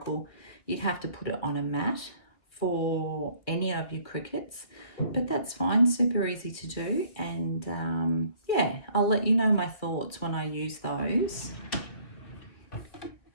you'd have to put it on a mat for any of your Cricuts, but that's fine, super easy to do. And yeah, I'll let you know my thoughts when I use those.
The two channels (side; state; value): right; late; 2.3 ms